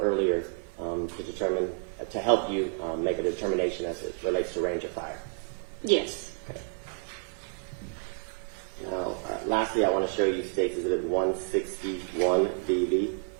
earlier, to help you make a determination as it relates to range of fire? Yes. Okay. Now, lastly, I want to show you States Exhibit 161 VV.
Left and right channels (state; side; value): silent; left; 58 dB below the other